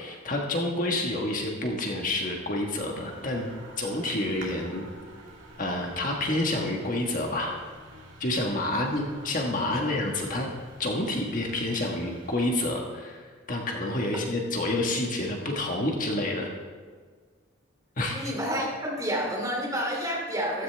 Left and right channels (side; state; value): both; normal; correlation 0.34